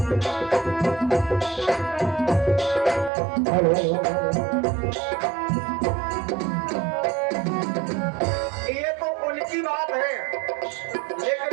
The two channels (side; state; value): left; drops out; at 3.1 s